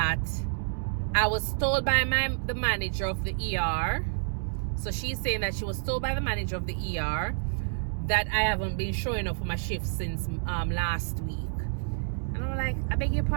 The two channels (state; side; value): silent; left; digital silence